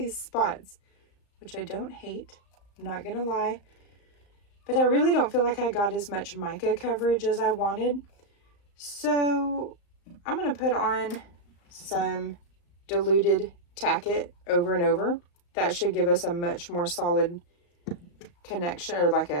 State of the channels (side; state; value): right; late; 35 ms